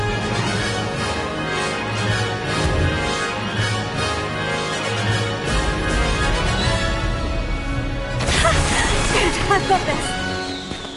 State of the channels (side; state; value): both; identical; correlation 1.00